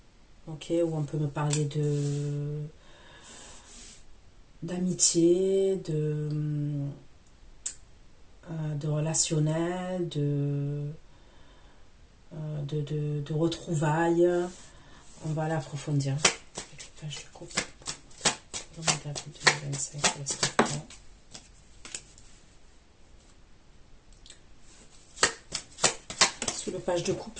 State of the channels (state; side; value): identical; both; correlation 1.00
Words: Ok, où on peut me parler d'amitié, de relationnel, de retrouvailles. On va l'approfondir. Page de coupe. Pour le mois d'avril 2025, les scorpions. Sous le page de coupe,